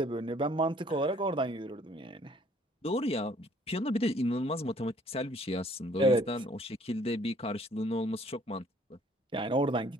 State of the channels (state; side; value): normal; both; correlation 0.59